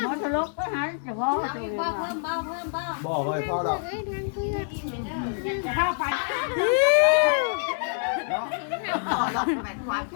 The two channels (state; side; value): silent; right; digital silence